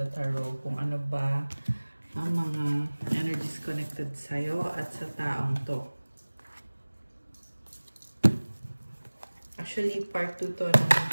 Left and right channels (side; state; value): both; inverted; correlation -1.00